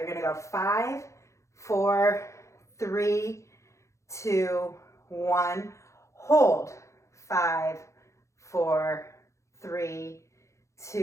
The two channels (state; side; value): late; right; 0.14 ms